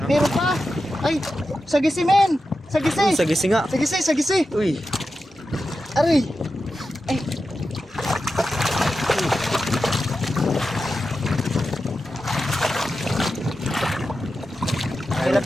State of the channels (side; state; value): both; normal; correlation 0.91